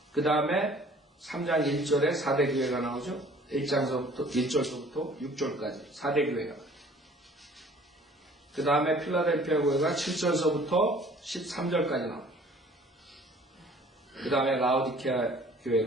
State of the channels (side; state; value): both; normal; correlation 0.53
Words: 그 다음에 3장 1절에 4대 교회가 나오죠. 1절서부터 6절까지 4대 교회가 나와요. 그 다음에 필라델피아 교회가 7절서부터 13절까지 나와요. 그 다음에 라오디케아